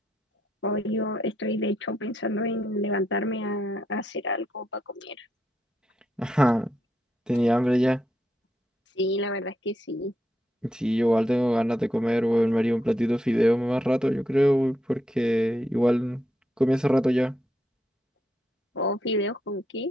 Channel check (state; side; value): normal; both; correlation 0.80